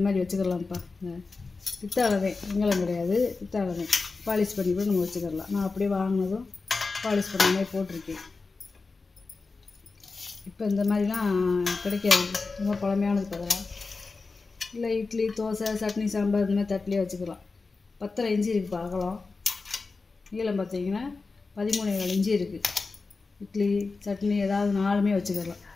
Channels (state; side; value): quieter; right; 4.1 dB